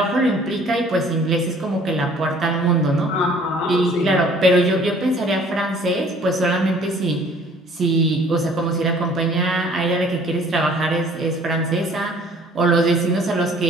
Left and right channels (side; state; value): both; normal; correlation 0.54